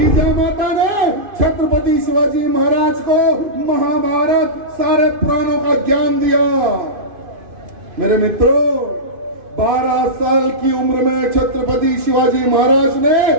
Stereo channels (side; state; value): left; late; 2.5 ms